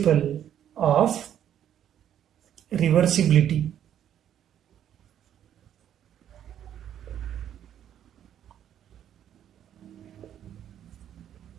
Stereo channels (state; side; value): quieter; left; 10.2 dB